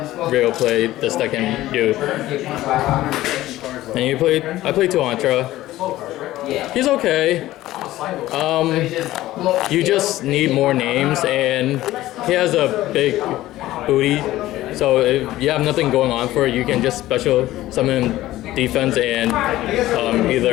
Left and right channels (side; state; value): right; quieter; 15.6 dB